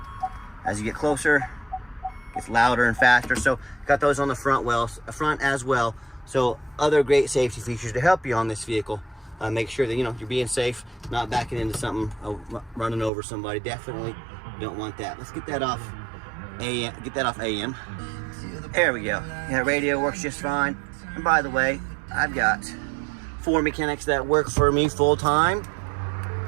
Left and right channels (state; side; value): drops out; left; at 13.1 s